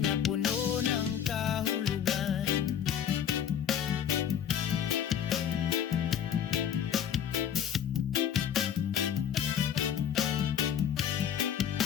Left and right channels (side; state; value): right; quieter; 9.0 dB